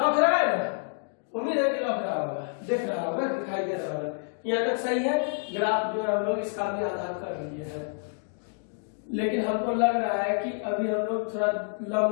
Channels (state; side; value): silent; right; 59 dB below the other